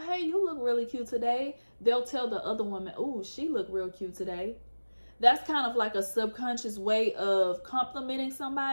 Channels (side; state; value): both; inverted; correlation -1.00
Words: you look really cute today, they'll tell the other woman, oh, she look real cute today. That's kind of like a subconscious way of complimenting